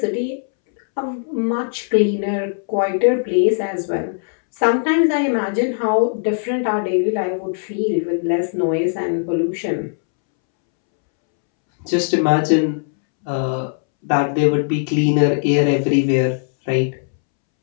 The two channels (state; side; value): silent; right; 66 dB below the other